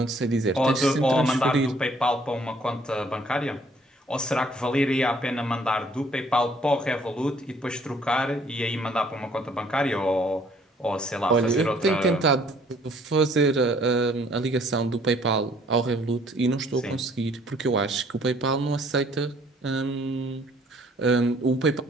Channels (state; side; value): normal; both; correlation 0.61